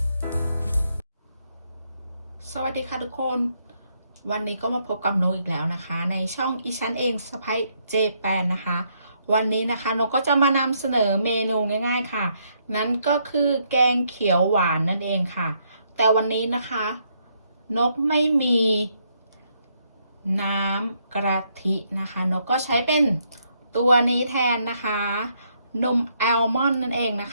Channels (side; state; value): both; inverted; correlation -0.74